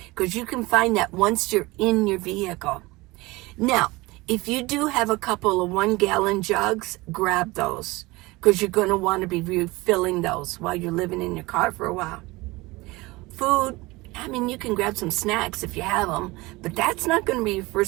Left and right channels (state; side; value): quieter; left; 21.9 dB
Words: because you can find that once you're in your vehicle. Now, if you do have a couple of 1-gallon jugs, grab those because you're going to want to be refilling those while you're living in your car for a while. Food, I mean, you can grab some snacks if you have them, but that's not going to be your